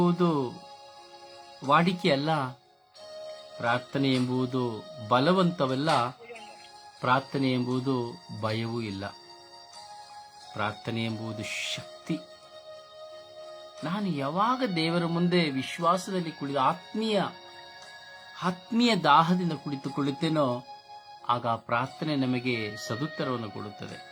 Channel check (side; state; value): both; identical; correlation 1.00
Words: ವಾಡಿಕೆ ಅಲ್ಲ, ಪ್ರಾರ್ಥನೆ ಎಂಬುದು ಬಲವಂತವಲ್ಲ, ಪ್ರಾರ್ಥನೆ ಎಂಬುದು ಭಯವೂ ಇಲ್ಲ. ಪ್ರಾರ್ಥನೆ ಎಂಬುದು ಶಕ್ತಿ. ನಾನು ಯಾವಾಗ ದೇವರ ಮುಂದೆ ವಿಶ್ವಾಸದಲ್ಲಿ ಕುಳಿತು ಆತ್ಮೀಯ ದಾಹದಿಂದ ಕುಳಿತುಕೊಳ್ಳುತ್ತೇನೋ ಆಗ ಆ ಪ್ರಾರ್ಥನೆ ನಮಗೆ ಸದುತ್ತರವನ್ನು ಕೊಡುತ್ತದೆ.